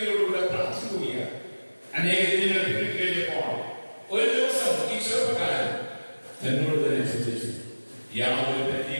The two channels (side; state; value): both; inverted; correlation -1.00